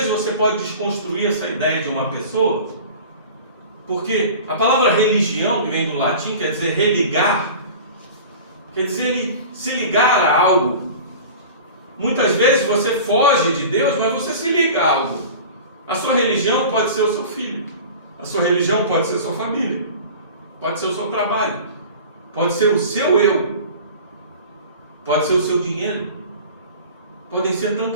você pode desconstruir essa ideia de uma pessoa, porque a palavra religião, que vem do latim, quer dizer religar, quer dizer ele se ligar a algo. Muitas vezes você foge de Deus, mas você se liga a algo. A sua religião pode ser o seu filho, a sua religião pode ser a sua família, pode ser o seu trabalho, pode ser o seu eu, pode ser o seu dinheiro, podem ser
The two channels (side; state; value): both; inverted; correlation -0.38